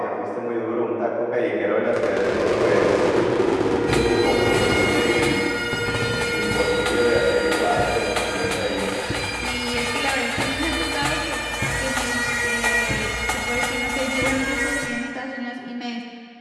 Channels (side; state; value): both; identical; correlation 1.00